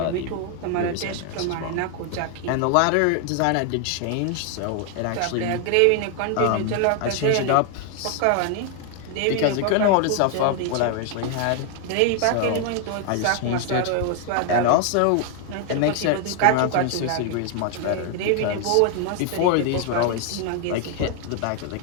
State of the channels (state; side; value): different; both; correlation 0.00